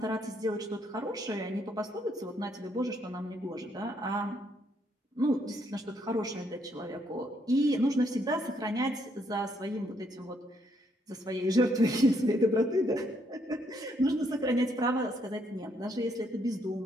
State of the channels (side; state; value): both; normal; correlation 0.72